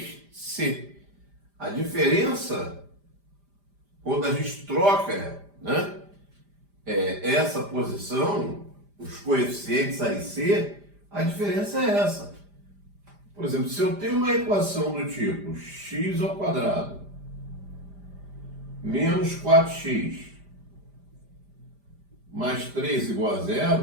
A diferença, quando a gente troca, né, essa posição, os coeficientes A e C, a diferença é essa. Por exemplo, se eu tenho uma equação do tipo x ao quadrado menos 4x mais 3 igual a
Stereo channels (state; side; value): late; left; 5.0 ms